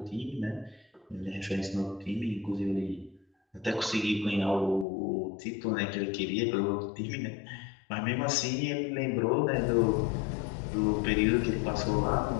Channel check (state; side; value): drops out; right; at 4.9 s